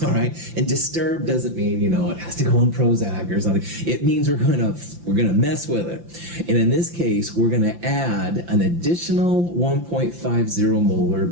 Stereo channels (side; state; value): left; late; 5.8 ms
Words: all right? And disturb doesn't mean, it has to go on Prozac or something. It means we're going to mess with it. And in this case, we're going to add an additional 1.50 molar